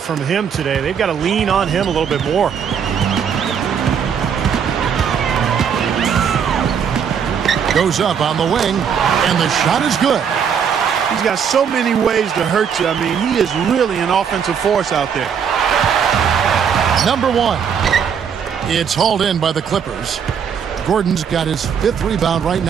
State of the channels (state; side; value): quieter; left; 7.4 dB